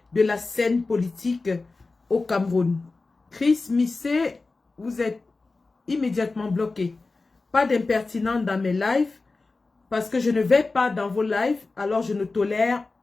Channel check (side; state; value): right; quieter; 3.7 dB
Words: de la scène politique au Cameroun. Chris Missé, vous êtes immédiatement bloqué. Pas d'impertinent dans mes lives parce que je ne vais pas dans vos lives, alors je ne tolère